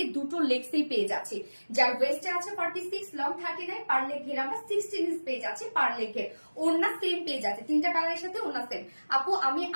দুটো লেগসেই পেয়ে যাচ্ছি। যার ওয়েস্টে আছে 46, লং 39, পার লেগ ঘের আমরা 16 ইঞ্চ পেয়ে যাচ্ছি পার লেগ ঘের। ওড়না সেম পেয়ে যাচ্ছে, 3টা কালারের সাথে ওড়না সেম। আপু আমি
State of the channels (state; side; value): inverted; both; correlation -1.00